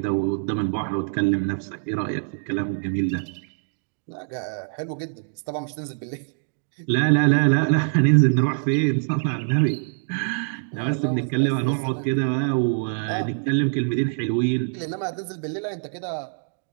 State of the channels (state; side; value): silent; left; digital silence